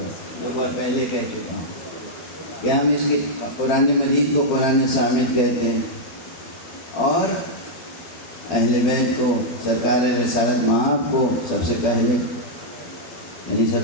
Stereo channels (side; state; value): right; late; 12 ms